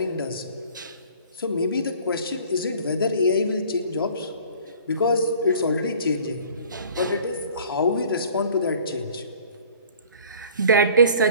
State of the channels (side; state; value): both; inverted; correlation -0.49